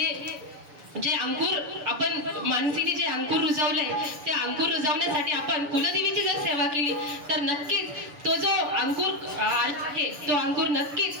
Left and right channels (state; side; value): late; left; 6.9 ms